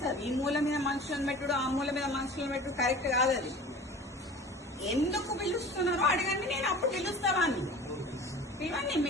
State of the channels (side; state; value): both; normal; correlation 0.40